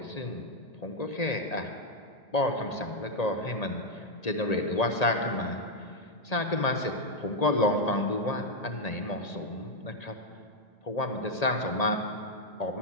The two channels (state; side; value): late; right; 1.8 ms